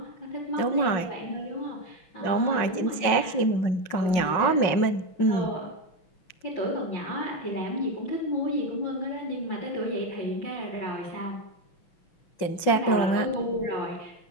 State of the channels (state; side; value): late; right; 5.5 ms